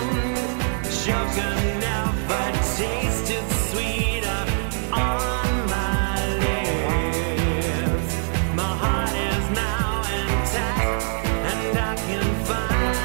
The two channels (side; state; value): left; silent; digital silence